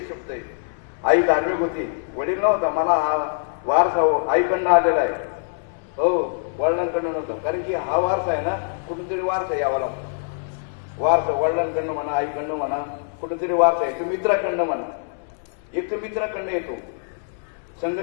शब्द आहे. आई धार्मिक होती, वडील नव्हता. मला हा वारसा आईकडनं आलेला आहे, हो वडिलांकडनं नव्हता. कारण की हा वारसा आहे ना, कुठूनतरी वारसा यावा लागतो. वारसा वडिलांकडनं म्हणा, आईकडनं म्हणा, कुठेतरी वारसा आहे. तो मित्राकडनं म्हणा. एक तर मित्राकडनं येतो,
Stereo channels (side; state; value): right; silent; digital silence